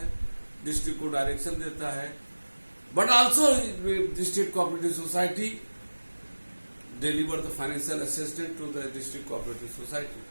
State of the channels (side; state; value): both; inverted; correlation -1.00